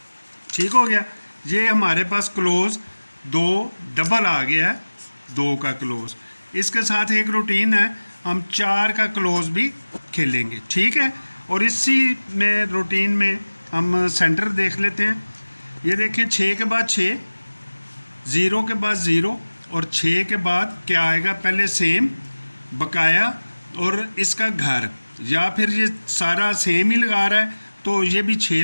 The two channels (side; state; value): both; inverted; correlation -1.00